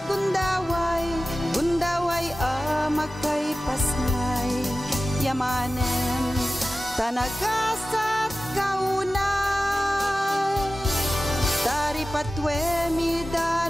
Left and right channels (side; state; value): both; normal; correlation 0.95